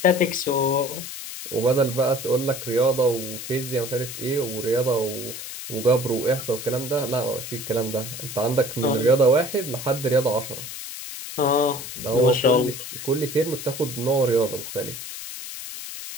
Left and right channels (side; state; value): left; noise; hiss, 9 dB below the sound